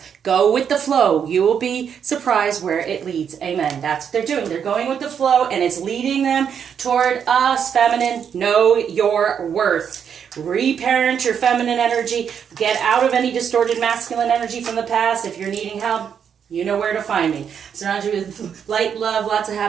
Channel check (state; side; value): quieter; left; 7.7 dB